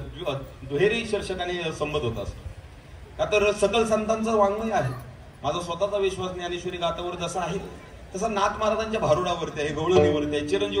दुहेरी शीर्षकाने संबोधत असतो. का तर सकल संतांचं वाङ्मय आहे. माझा स्वतःचा विश्वास ज्ञानेश्वरी गाथावर जसा आहे तसा नाथ महाराजांच्या भारुडावरती आहे, गवळणीवरती आहे,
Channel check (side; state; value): both; identical; correlation 1.00